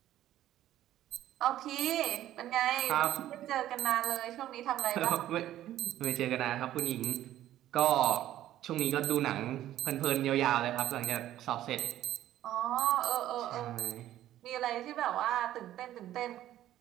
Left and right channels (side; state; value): left; quieter; 13.0 dB